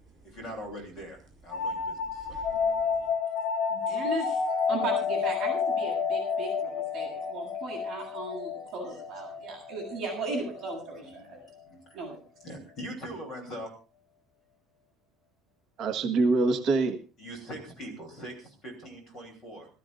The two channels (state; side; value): normal; both; correlation 0.54